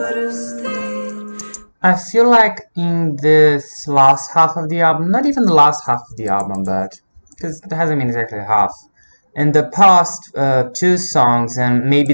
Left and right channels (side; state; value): both; inverted; correlation -1.00